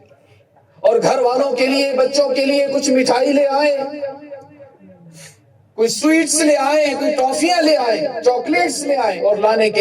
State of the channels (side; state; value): both; identical; correlation 1.00